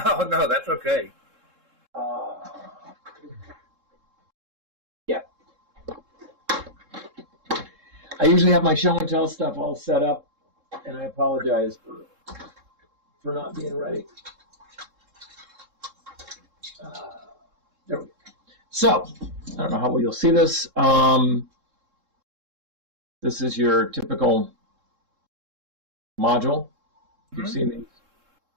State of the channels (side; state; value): left; late; 3.7 ms